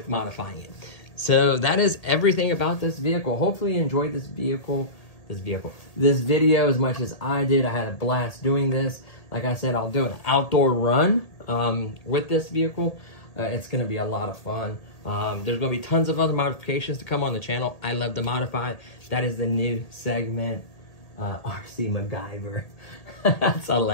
modifying it. So that is everything about this vehicle. Hopefully you enjoyed this video as much as I did. I had a blast doing this. Like I said, I'll do an outdoor run with this vehicle. It's going to be a lot of fun. There's going to be tons of other modifications to come on the channel. I love to modify. That is the new segment, RC MacGyver. That's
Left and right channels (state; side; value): late; right; 1.8 ms